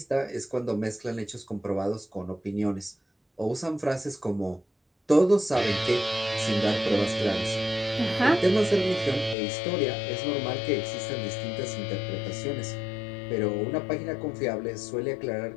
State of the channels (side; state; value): right; drops out; at 9.3 s